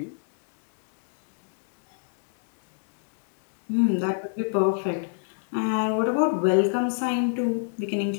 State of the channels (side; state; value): right; silent; digital silence